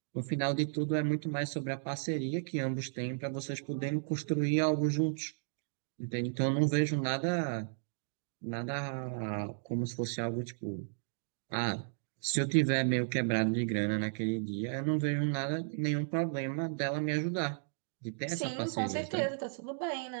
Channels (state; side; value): silent; left; digital silence